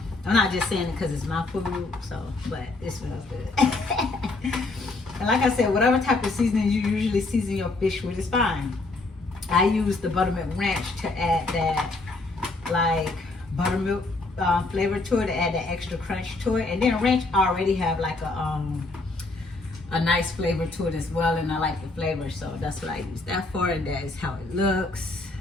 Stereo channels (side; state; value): right; quieter; 3.3 dB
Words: I'm not just saying it because it's my food, but it smells good. And like I said, whatever type of seasoning you usually season your fish with is fine. I use the buttermilk ranch to add that like buttermilk flavor to it, to add that extra crunch to it. And then ranch already have like a nice flavor to it as well, and I like the flavor, so that's what I use that for, and that is how it looks.